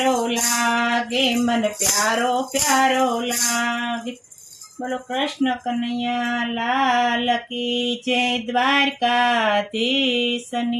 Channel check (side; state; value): both; identical; correlation 1.00